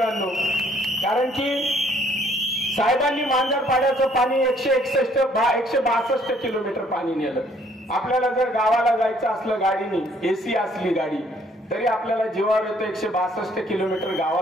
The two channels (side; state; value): both; normal; correlation 0.63